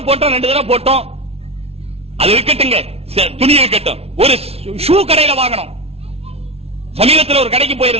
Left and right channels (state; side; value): late; left; 0.30 ms